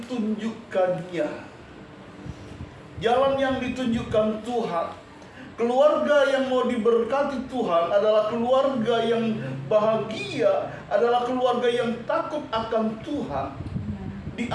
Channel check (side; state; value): both; identical; correlation 1.00